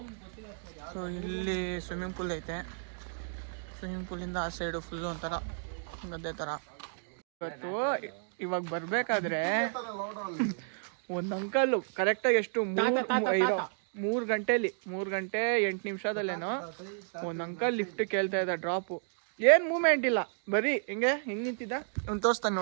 ಸೊ ಇಲ್ಲಿ ಸ್ವಿಮ್ಮಿಂಗ್ ಪೂಲ್ ಐತೆ. ಸ್ವಿಮ್ಮಿಂಗ್ ಪೂಲಿಂದ ಆ ಸೈಡು ಫುಲ್ಲು ಒಂಥರ ಗದ್ದೆ ಥರ. ಇವತ್ತು ಇವಾಗ ಬರಬೇಕಾದ್ರೆ ಒಂದು ಅಂಕಲ್ಲು ಕರೆಕ್ಟಾಗಿ ಎಷ್ಟು 3 ಗಂಟೆಲಿ 3 ಗಂಟೆ 8 ನಿಮಿಷದಲ್ಲೇನೋ ಒಂದು ಅಂಕಲ್ ಲಿಫ್ಟ್ ಕೇಳ್ತಾ ಇದ್ದ. ಡ್ರಾಪು ಏನು ಮೂವ್ಮೆಂಟ್ ಇಲ್ಲ, ಬರೀ ಹೆಂಗೆ ನಿಂತಿದ್ದ. ಅವ್ನು ತೋರಿಸ್ತಾನೆ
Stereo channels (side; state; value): left; silent; digital silence